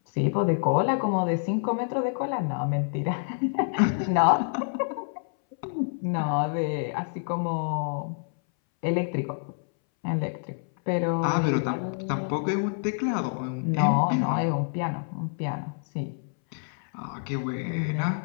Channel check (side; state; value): right; silent; 60 dB below the other